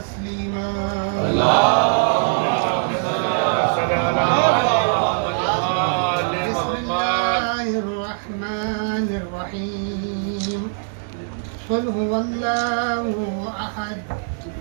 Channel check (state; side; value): silent; left; 65 dB below the other